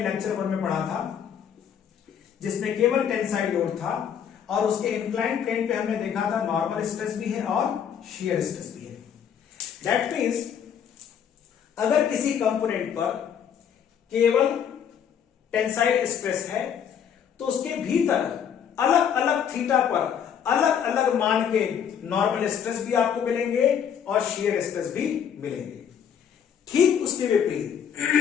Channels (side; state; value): right; quieter; 8.3 dB